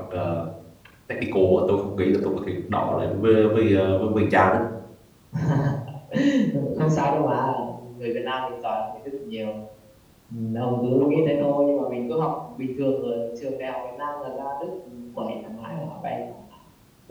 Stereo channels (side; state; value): both; identical; correlation 1.00